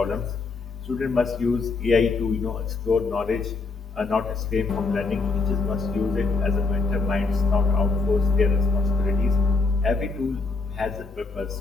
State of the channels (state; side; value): quieter; right; 4.0 dB